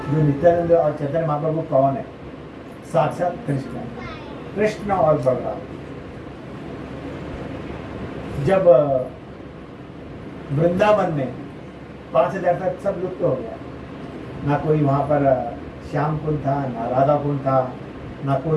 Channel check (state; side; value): identical; both; correlation 1.00